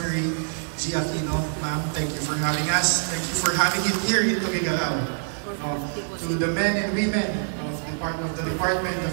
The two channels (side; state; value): left; silent; 62 dB below the other